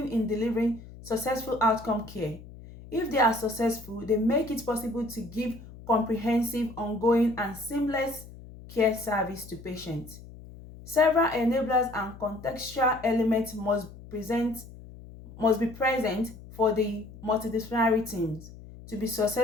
in delivering successful outcome care. If they are successful, they make it possible to give comprehensive, ongoing, and seamless care service to patients. Several enablers and contextual elements must be present for the multidisciplinary teams to be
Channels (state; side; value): noise; left; hum, 17 dB below the sound